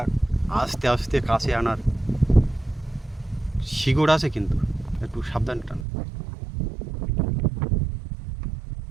আস্তে আস্তে কাছে আনার। শিকড় আছে কিন্তু, একটু সাবধান টান।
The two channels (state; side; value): drops out; left; at 5.9 s